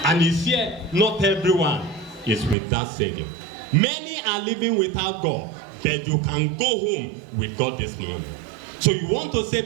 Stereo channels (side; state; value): left; drops out; at 2.6 s